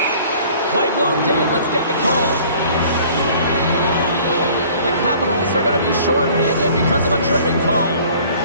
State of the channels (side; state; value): both; inverted; correlation -0.52